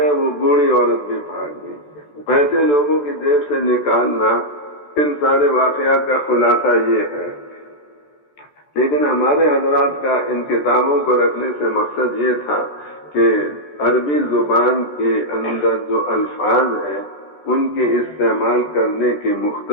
وہ بوڑھی عورت بھی بھاگ گئی۔ پیسے لوگوں کی جیب سے نکالنا، ان سارے واقعات کا خلاصہ یہ ہے۔ لیکن ہمارے حضرات کا ان کتابوں کو رکھنے سے مقصد یہ تھا کہ عربی زبان کے اندر جو الفاظ ہیں ان کے استعمال کرنے کے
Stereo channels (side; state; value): right; late; 14 ms